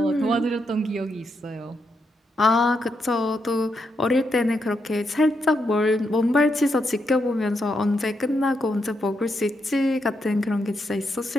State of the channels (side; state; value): both; normal; correlation 0.81